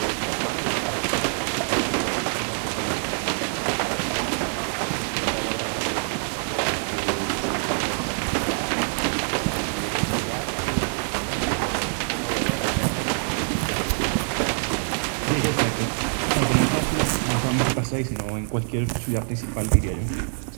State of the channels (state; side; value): silent; left; 62 dB below the other